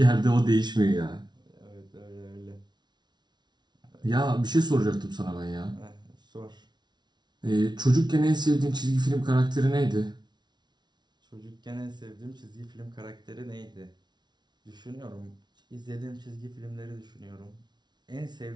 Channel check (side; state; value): left; late; 0.20 ms